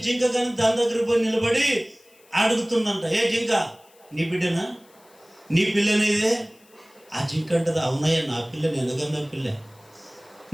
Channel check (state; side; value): noise; left; hiss, 29 dB below the sound